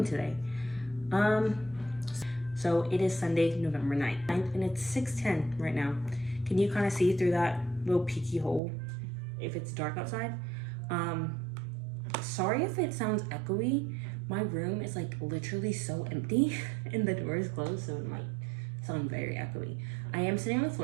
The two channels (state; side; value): drops out; left; at 8.6 s